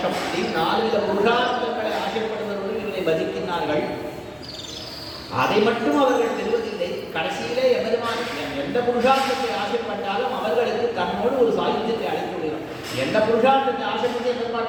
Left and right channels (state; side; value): identical; both; correlation 1.00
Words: அப்படின்னு 4 வித புருஷார்த்தங்களை ஆசைப்படுபவர்கள் இவரை பஜிக்கின்றார்கள். அதை மட்டும் அவர்கள் பெறுவதில்லை. கடைசியிலே எம்பெருமான் எந்த புருஷார்த்தத்தை ஆசைப்பட்டாலும் அவர்களுக்கு தன்னோடு ஒரு சாயுத்தியத்தை அழைத்து விடுகிறான். எந்த புருஷார்த்தத்தை ஆசைப்பட்டு